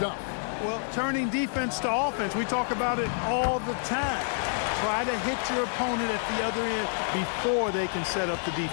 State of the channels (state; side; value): silent; right; 59 dB below the other